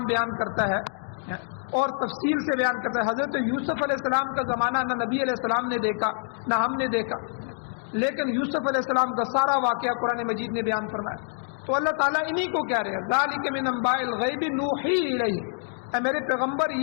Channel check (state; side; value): silent; right; digital silence